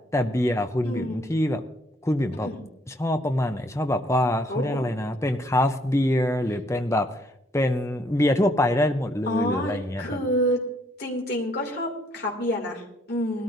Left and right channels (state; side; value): normal; both; correlation 0.67